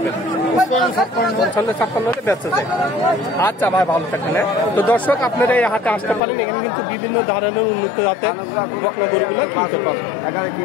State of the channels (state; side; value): drops out; right; at 6.2 s